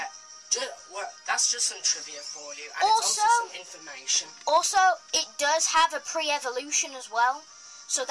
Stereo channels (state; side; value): identical; both; correlation 1.00